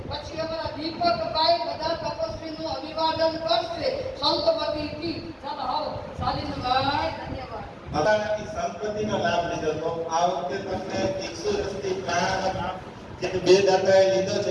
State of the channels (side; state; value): both; identical; correlation 1.00